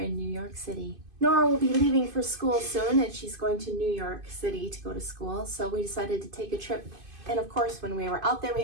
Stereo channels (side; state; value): left; late; 2.5 ms